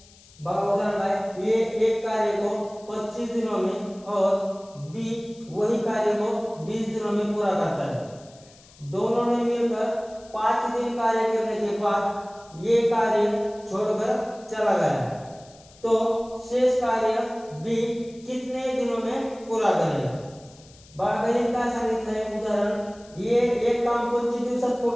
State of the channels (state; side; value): noise; left; hiss, 25 dB below the sound